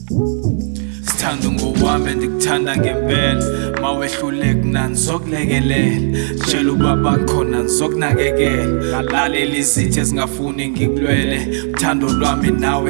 Sithanda ngowami ndikuthanda ngempela. Mawehluleka nangizokulekelela. Tshela ubaba khona ngizokunakekela. Lalela izitha ezingafuni ngikulwele. Uthando lwami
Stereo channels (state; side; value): silent; left; 61 dB below the other